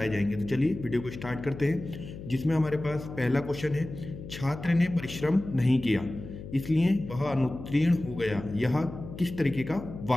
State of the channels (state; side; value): noise; left; hum, 12 dB below the sound